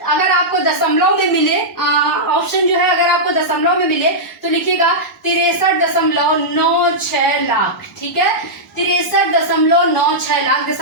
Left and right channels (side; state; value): both; normal; correlation -0.10